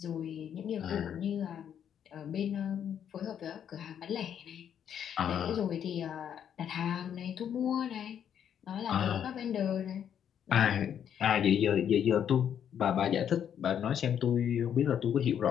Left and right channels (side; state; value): right; quieter; 9.0 dB